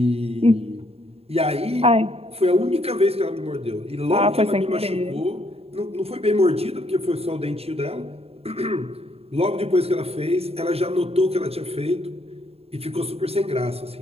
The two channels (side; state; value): left; late; 0.29 ms